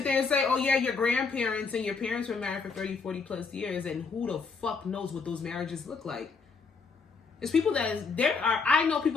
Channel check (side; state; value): right; quieter; 4.9 dB